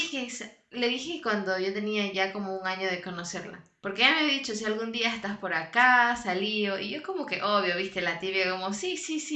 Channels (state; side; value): identical; both; correlation 1.00